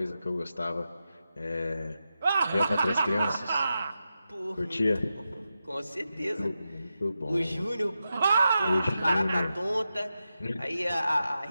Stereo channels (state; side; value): inverted; both; correlation -0.89